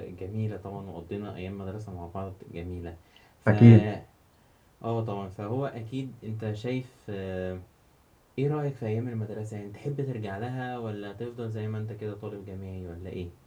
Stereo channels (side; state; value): both; identical; correlation 1.00